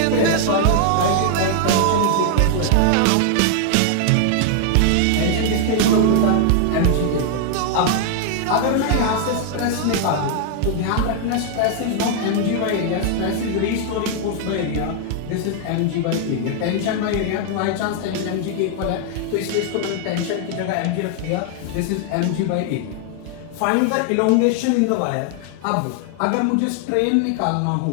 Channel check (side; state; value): both; different; correlation 0.00